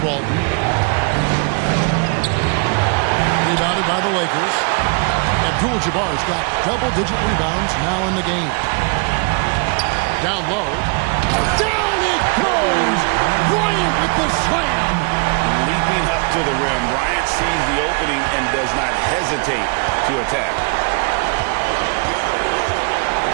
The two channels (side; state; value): left; quieter; 34.5 dB